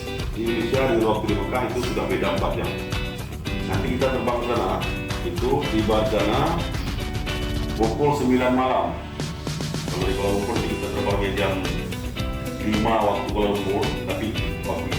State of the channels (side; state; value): both; identical; correlation 1.00